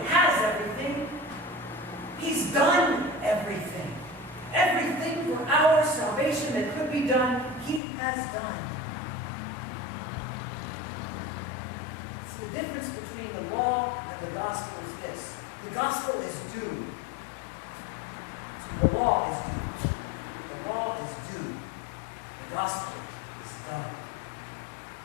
has everything, He's done everything. Everything for our salvation that could be done, He has done. So the difference between the law and the gospel is this. The gospel is due. See, the law is due. The law is due. The gospel is done.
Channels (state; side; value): drops out; right; at 7.8 s